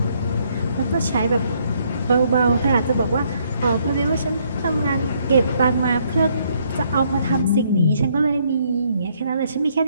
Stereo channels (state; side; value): inverted; both; correlation -0.69